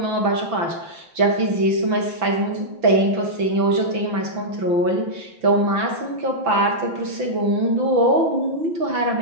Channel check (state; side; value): late; left; 6.0 ms